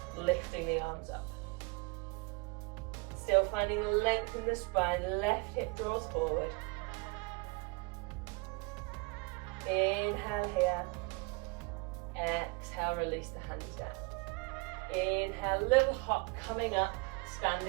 lifting the arms up. Still finding length in the spine, left hip draws forward. Inhale here. Exhale, release the hands down. Inhale, little hop coming up,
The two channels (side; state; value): left; quieter; 28.6 dB